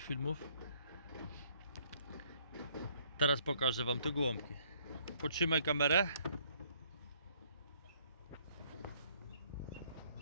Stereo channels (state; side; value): inverted; both; correlation -0.64